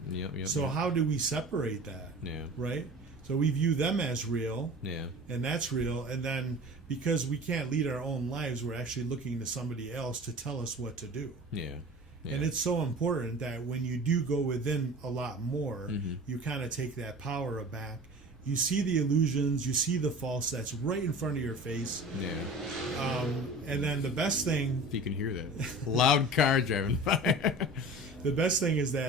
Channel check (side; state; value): both; normal; correlation 0.38